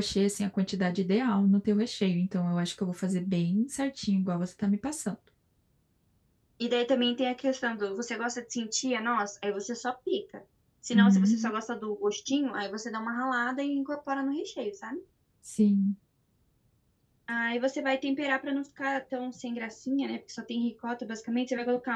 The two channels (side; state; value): both; identical; correlation 1.00